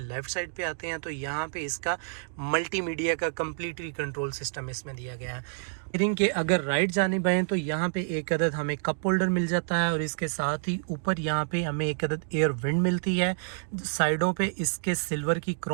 साइड पे आते हैं तो यहाँ पे इसका मल्टीमीडिया का कम्प्लीटली कंट्रोल सिस्टम इसमें दिया गया है। स्टीयरिंग के अगर राइट जानिब आएँ तो यहाँ पे एक अदद हमें कप होल्डर मिल जाता है और इसके साथ ही ऊपर यहाँ पे हमें एक अदद एयर विंड मिलती है। साइडों पे इसके सिल्वर की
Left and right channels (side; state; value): left; silent; digital silence